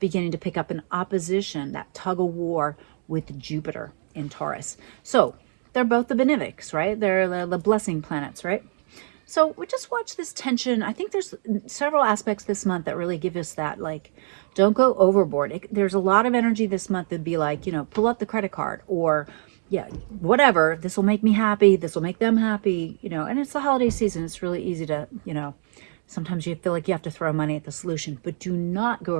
beginning to pick up an opposition, that tug of war with Jupiter in Taurus. So they're both the benefics, right? They're the blessing planets, right? So we just watch this tension. I think there's several aspects this month that really give us that, like, don't go overboard. There's a lot of energy this month that'd be like, you know, pull up the credit card, or yeah, whatever. This will make me happy. This will make them happy, you know, and it's the holiday season. It's really easy to, you know, sometimes you feel like you have to throw money at the solution, but do not go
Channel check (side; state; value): left; silent; digital silence